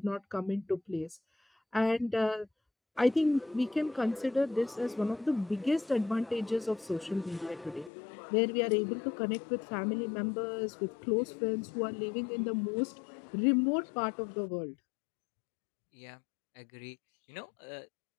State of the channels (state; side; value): drops out; right; at 7.9 s